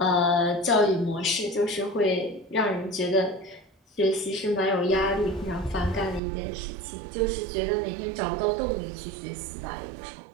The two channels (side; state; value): left; drops out; at 6.2 s